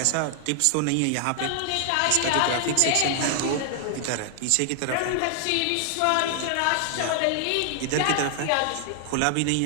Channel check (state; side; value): different; both; correlation 0.00